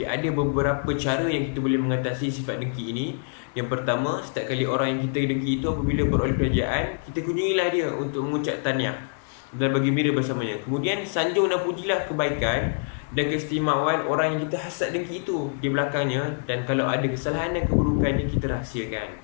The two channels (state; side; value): silent; right; digital silence